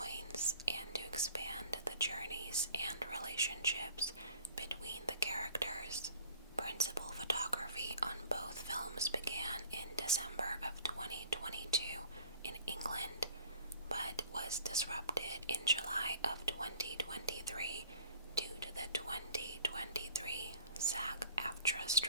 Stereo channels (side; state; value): both; inverted; correlation -0.49